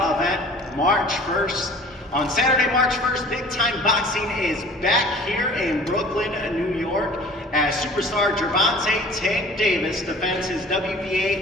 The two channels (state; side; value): normal; both; correlation 0.46